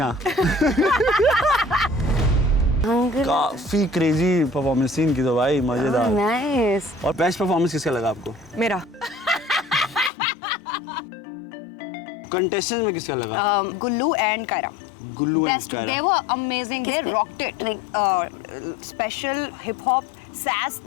काफी क्रेजी परफॉर्मेंस थी इनकी तो भाई, मजेदार। Nice. और बेस्ट परफॉर्मेंस किसका लगा आपको? मेरा। कंटेस्टेंट में किसका लगा? Gullu and Kaira. Gullu and Best. Kaira. They were amazing. They rocked it. Special hip hop, sass.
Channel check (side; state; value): right; drops out; at 10.1 s